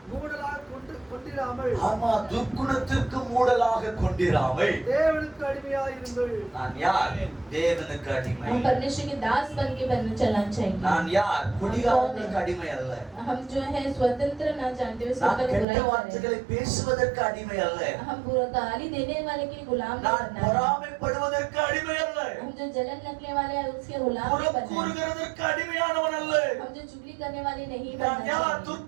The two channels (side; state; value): left; drops out; at 15.7 s